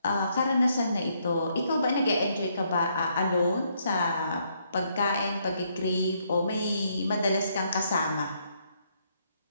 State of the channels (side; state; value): both; inverted; correlation -0.73